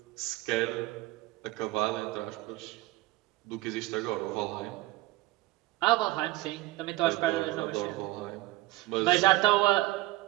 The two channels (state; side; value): quieter; left; 18.8 dB